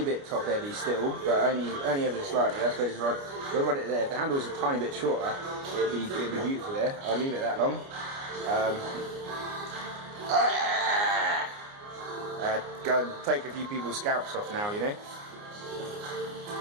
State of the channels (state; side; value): late; left; 29 ms